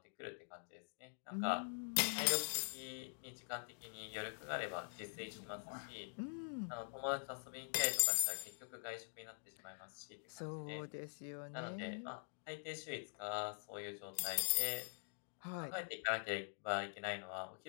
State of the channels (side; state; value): right; silent; digital silence